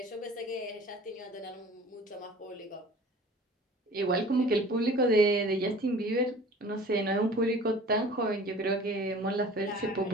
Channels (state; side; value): normal; both; correlation 0.45